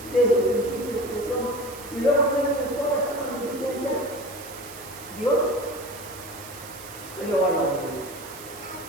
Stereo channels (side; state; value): right; noise; hiss, 15 dB below the sound